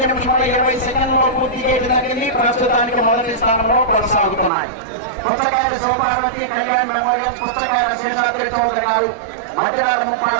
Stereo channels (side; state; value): left; drops out; at 4.5 s